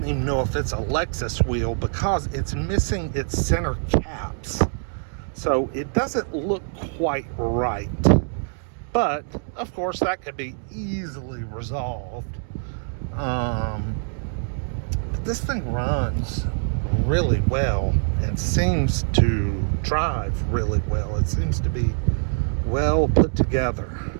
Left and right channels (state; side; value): silent; left; digital silence